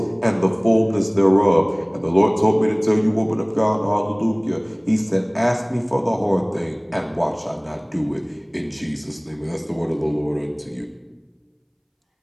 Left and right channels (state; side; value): identical; both; correlation 1.00